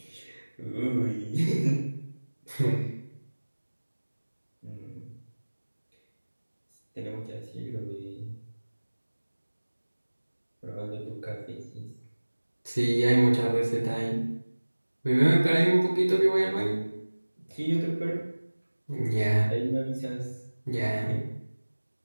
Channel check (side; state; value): both; inverted; correlation -1.00